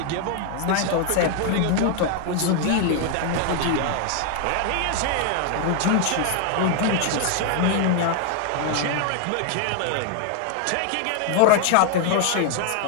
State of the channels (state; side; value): different; both; correlation 0.00